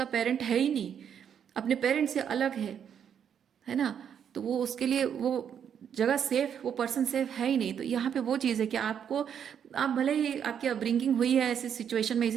पेरेंट है ही नहीं, अपने पेरेंट से अलग है ना। तो वो उसके लिए वो जगह सेफ, वो पर्सन सेफ है ही नहीं। तो यहाँ पे वो चीज़ है कि आपको, आप भले ही आपकी अपब्रिंगिंग हुई है ऐसी सिचुएशन में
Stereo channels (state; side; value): quieter; left; 8.3 dB